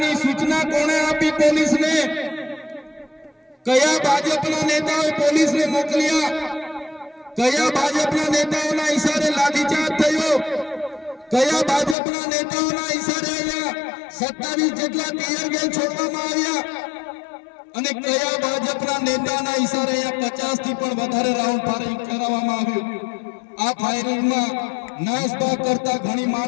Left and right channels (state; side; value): drops out; right; at 12.0 s